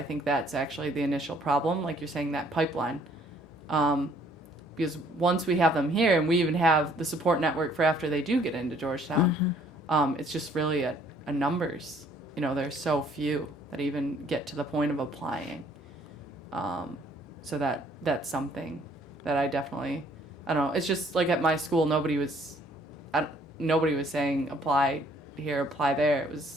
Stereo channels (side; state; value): both; normal; correlation 0.61